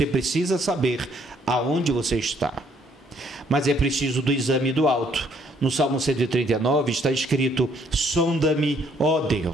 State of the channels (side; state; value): both; normal; correlation 0.66